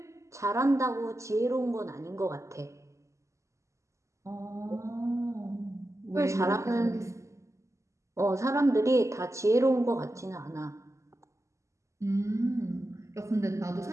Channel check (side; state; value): left; late; 0.14 ms